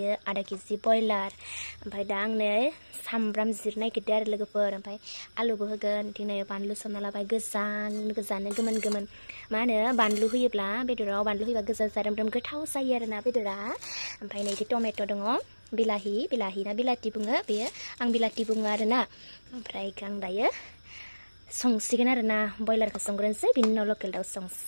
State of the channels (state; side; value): inverted; both; correlation -1.00